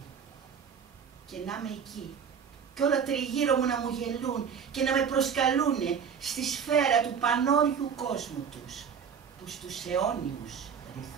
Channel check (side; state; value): left; quieter; 7.0 dB